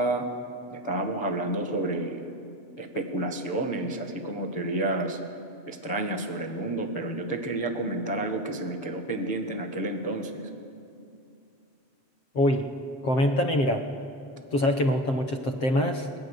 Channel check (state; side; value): late; right; 7.6 ms